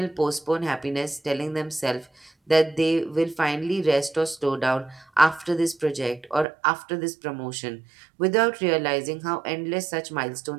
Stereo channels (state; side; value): drops out; left; at 6.5 s